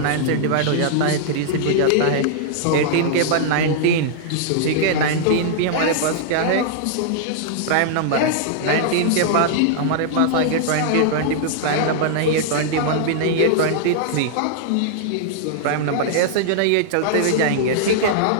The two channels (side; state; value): both; different; correlation -0.01